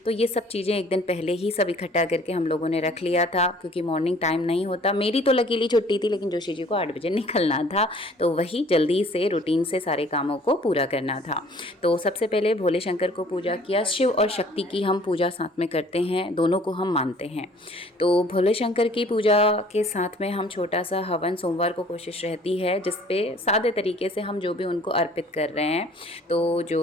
तो ये सब चीज़ें एक दिन पहले ही सब इकट्ठा करके हम लोगों ने रख लिया था, क्योंकि मॉर्निंग टाइम नहीं होता। मेरी तो लकीली छुट्टी थी, लेकिन जोशी जी को 8 बजे निकलना था, तो वही जल्दी से रूटीन से सारे कामों को पूरा करना था। तो सबसे पहले भोले शंकर को पूजा किया। शिव और शक्ति की हम पूजा साथ में करते हैं, दोनों को हम मानते हैं। तो भोले शंकर की पूजा के साथ में हम छोटा सा हवन सोमवार को कोशिश रहती है, जिसपे सादे तरीके से हम जो भी उनको अर्पित कर रहे हैं, तो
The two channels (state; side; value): normal; both; correlation 0.54